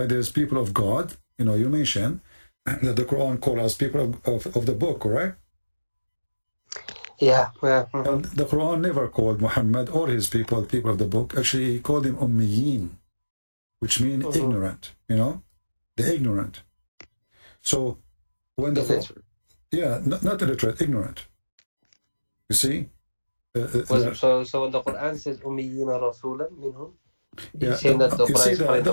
there's people of God. You know, you mentioned that the Quran calls us people of the book, correct? Yeah. And the Quran never called Muhammad or his people of the book. Actually, he called them Ummiyin, which means ignorant, you know, the ignorant. So when the not illiterate, ignorant. You see? So when the Quran says Ummiyina Rasulan minhum, you see,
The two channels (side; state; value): both; inverted; correlation -1.00